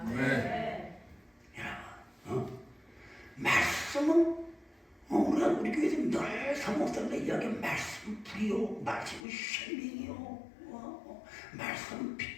여러분, 말씀은 우리 교회에서 늘 사모님과 이야기하는 말씀 불이요, 말씀은 생명이요, 말씀은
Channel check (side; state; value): right; drops out; at 9.2 s